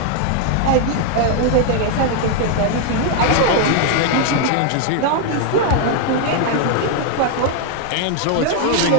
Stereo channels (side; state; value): both; different; correlation 0.00